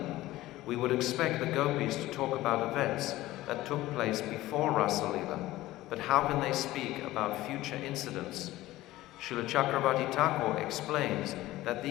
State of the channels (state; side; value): quieter; right; 16.7 dB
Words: We would expect the gopis to talk about events that took place before Rasa Leela, but how can they speak about future incidents? Srila Chakravarti Thakur explains that